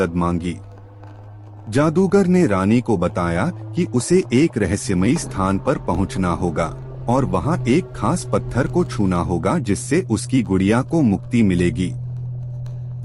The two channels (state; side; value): identical; both; correlation 1.00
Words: मांगी। जादूगर ने रानी को बताया कि उसे एक रहस्यमयी स्थान पर पहुंचना होगा और वहां एक खास पत्थर को छूना होगा जिससे उसकी गुड़िया को मुक्ति मिलेगी।